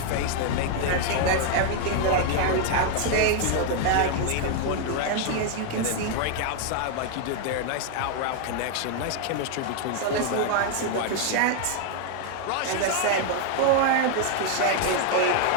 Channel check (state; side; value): different; both; correlation 0.00